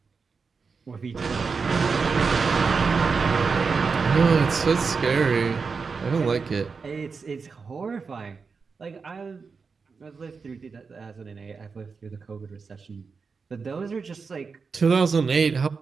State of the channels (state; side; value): quieter; left; 5.0 dB